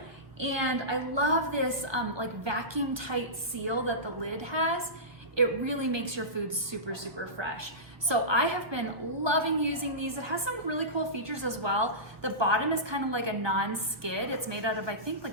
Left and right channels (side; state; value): left; late; 1.2 ms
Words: And I love this like vacuum tight seal that the lid has. It really makes your food super, super fresh. So I have been loving using these. It has some really cool features as well. The bottom is kind of like a non-skid. It's made out of, I think,